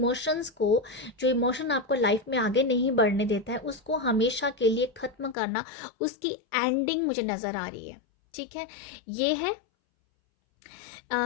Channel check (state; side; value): drops out; right; at 5.4 s